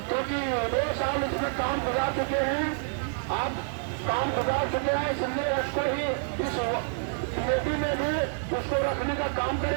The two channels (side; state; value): left; silent; 59 dB below the other